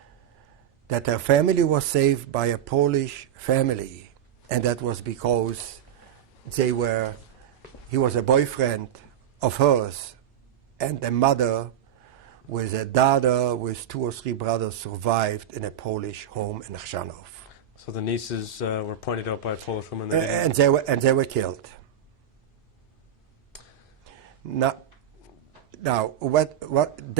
that her family was saved by a Polish family, and that was because he was a boyfriend of hers, and the mother with a daughter with 2 or 3 brothers survived in a Polish home in Chrzanów. So the nieces were pointed out by a Polish woman. And they were killed. Now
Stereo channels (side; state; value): left; quieter; 9.2 dB